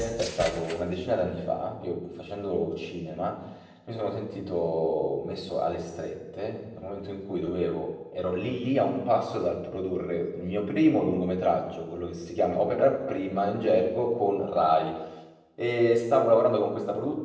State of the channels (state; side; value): identical; both; correlation 1.00